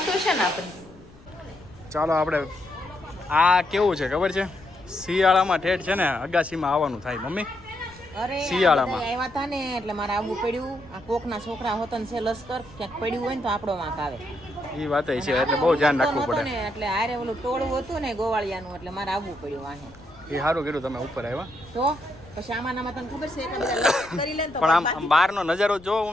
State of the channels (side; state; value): left; noise; rumble, 23 dB below the sound